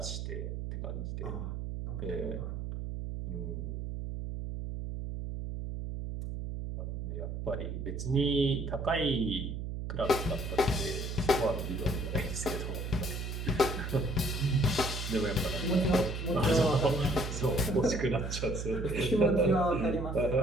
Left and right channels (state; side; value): noise; right; hum, 5 dB below the sound